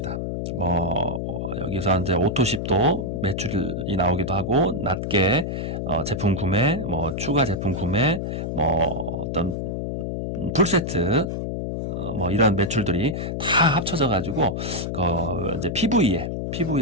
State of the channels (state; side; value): noise; left; hum, 3 dB below the sound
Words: 뭐 여기서 이제 오토십도 매출이 나오기도 하고, 낮게 제품 구매, 뭐 추가 제품 구매, 뭐 어떤 풀세트, 뭐 이런 매출들이 다 합쳐져 가지고 이제